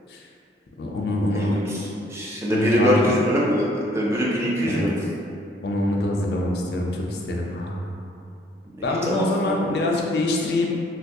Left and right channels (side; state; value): both; normal; correlation 0.62